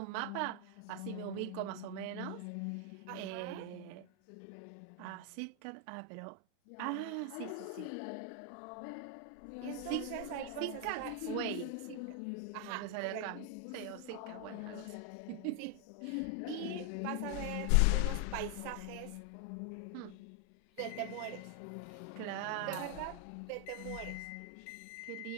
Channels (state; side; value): different; both; correlation 0.00